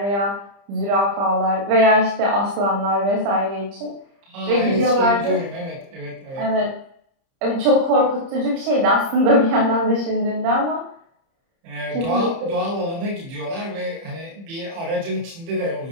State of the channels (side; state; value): left; late; 30 ms